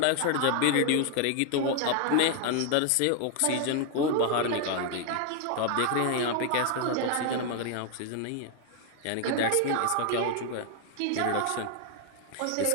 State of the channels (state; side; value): different; both; correlation 0.00